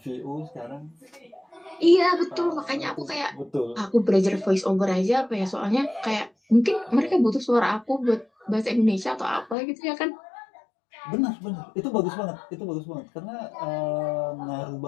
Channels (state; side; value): drops out; right; at 9.6 s